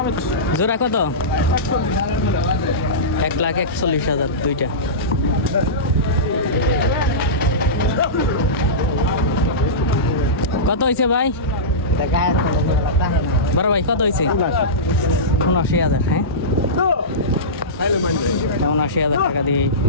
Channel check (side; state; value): both; normal; correlation -0.19